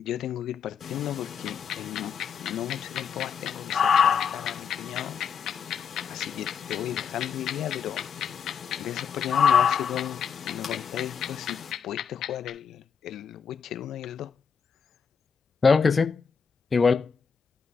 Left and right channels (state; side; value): quieter; right; 6.7 dB